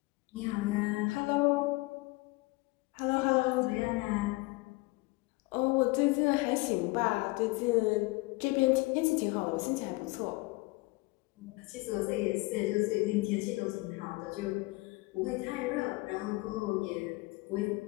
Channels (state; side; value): quieter; right; 23.6 dB